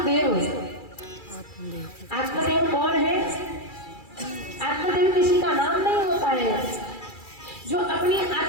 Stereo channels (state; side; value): late; right; 2.3 ms